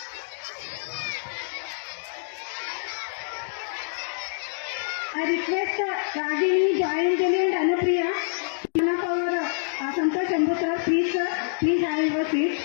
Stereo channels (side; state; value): right; silent; digital silence